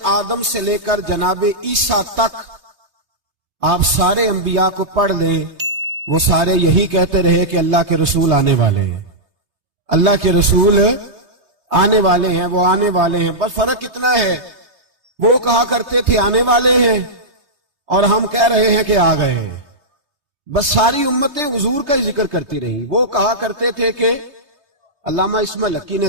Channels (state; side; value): late; left; 3.2 ms